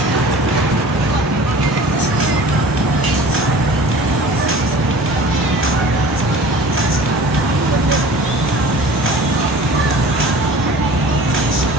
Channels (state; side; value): normal; both; correlation 0.43